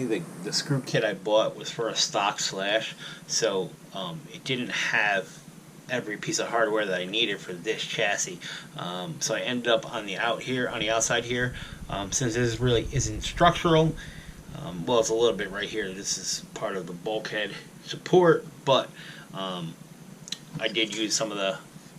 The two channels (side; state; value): both; identical; correlation 1.00